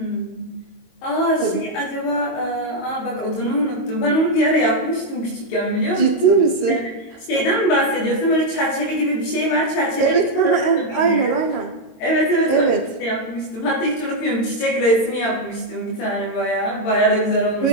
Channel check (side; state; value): right; late; 22 ms